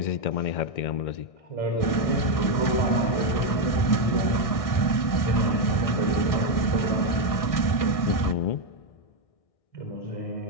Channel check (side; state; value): right; late; 1.6 ms